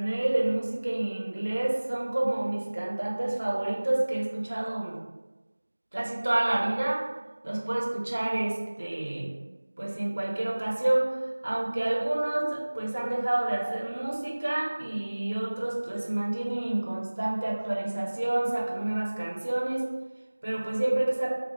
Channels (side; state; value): both; inverted; correlation -1.00